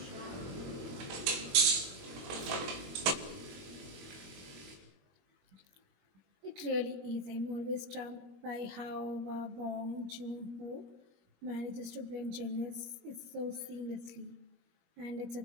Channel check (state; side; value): late; left; 21 ms